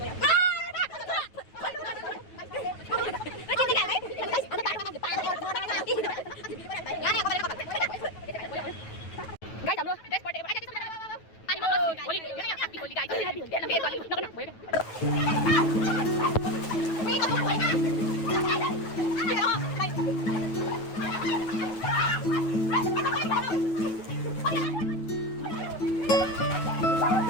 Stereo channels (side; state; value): right; late; 9.2 ms